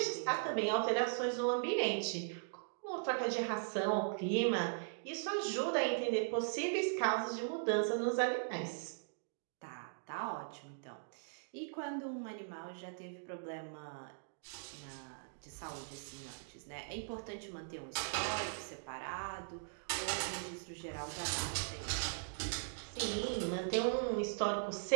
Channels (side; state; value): left; silent; digital silence